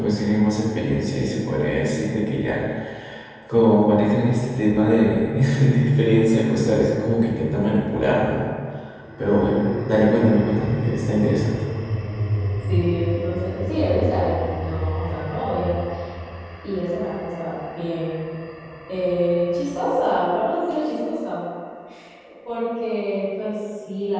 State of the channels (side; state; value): both; identical; correlation 1.00